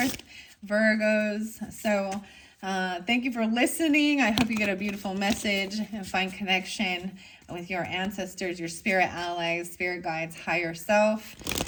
Virgos. So thank you for listening. I hope you get a beautiful message and find connection with your ancestors, your spirit allies, spirit guides, higher self,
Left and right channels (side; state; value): both; identical; correlation 1.00